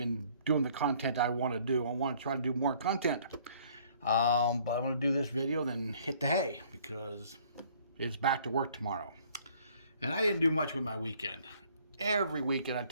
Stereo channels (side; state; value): both; inverted; correlation -0.59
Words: doing the content I want to do. I want to try to do more content. But I'm going to do this video, then hit the hay because it's back to work tomorrow. And I didn't do much with my weekend. Every weekend I